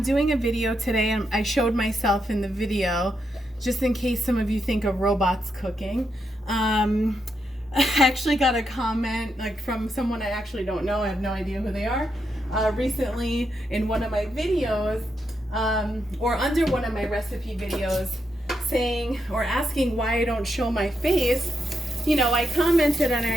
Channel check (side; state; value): both; normal; correlation 0.82